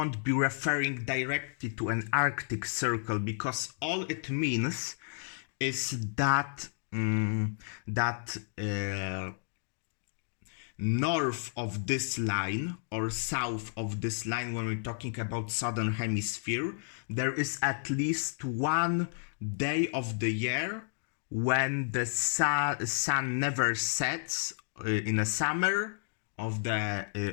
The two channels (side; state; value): right; silent; digital silence